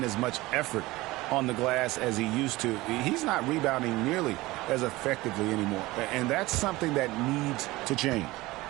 as much effort on the glass as he used to, he's not rebounding nearly as effectively anymore. And that's something that needs to change.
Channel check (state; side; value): quieter; left; 19.8 dB